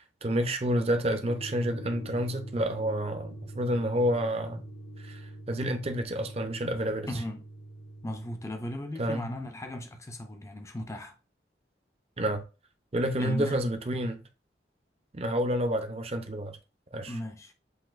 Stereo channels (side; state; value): both; normal; correlation 0.61